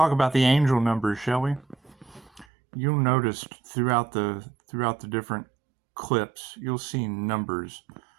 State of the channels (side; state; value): left; drops out; at 2.5 s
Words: about the angel numbers, shall we? You'll notice throughout the different clips, you'll see numbers.